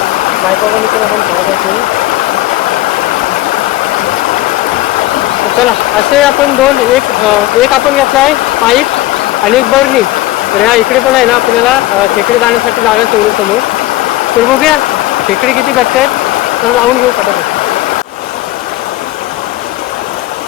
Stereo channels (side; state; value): right; quieter; 16.9 dB